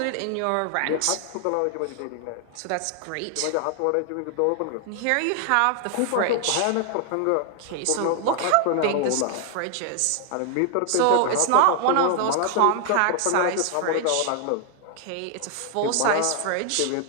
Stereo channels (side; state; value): both; different; correlation 0.00